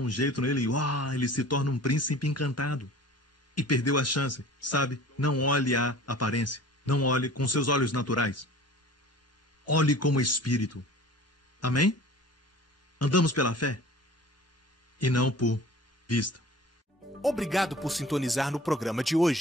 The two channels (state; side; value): normal; both; correlation 0.44